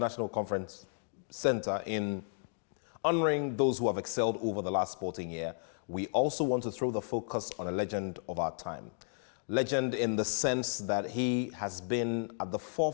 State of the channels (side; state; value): right; silent; digital silence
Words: Conference Center in honoring those who have excelled over the last sporting year, we also want to throw the focus on a legend of our time. Legend in the sense that he has been at the